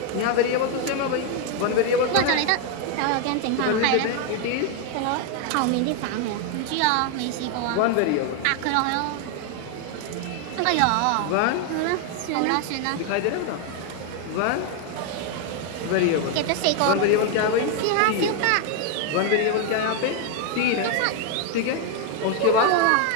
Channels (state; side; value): different; both; correlation 0.01